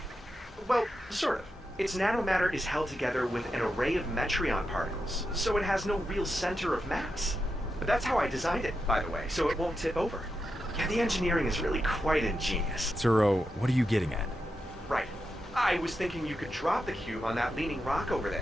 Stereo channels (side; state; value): both; normal; correlation 0.87